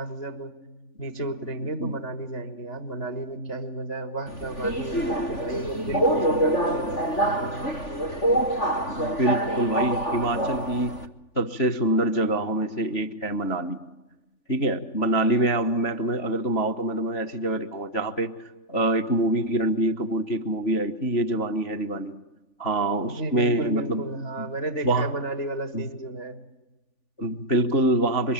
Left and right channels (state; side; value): late; right; 3.4 ms